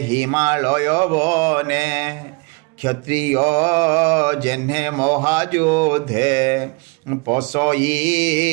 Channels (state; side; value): quieter; left; 30.0 dB